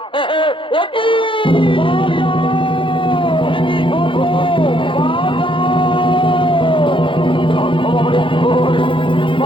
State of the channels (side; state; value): right; late; 0.25 ms